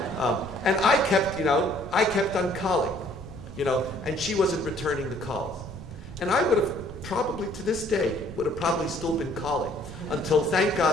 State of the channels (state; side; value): noise; right; rumble, 14 dB below the sound